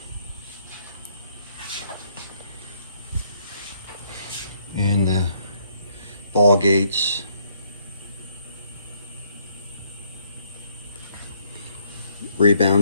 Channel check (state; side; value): inverted; both; correlation -0.69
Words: and the ball gates,